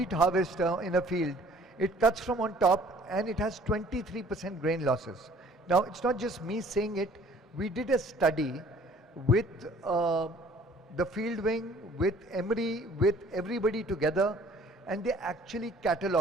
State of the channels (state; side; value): normal; both; correlation 0.55